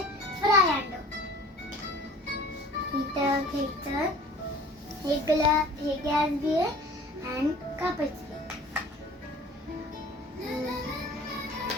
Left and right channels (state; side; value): normal; both; correlation 0.46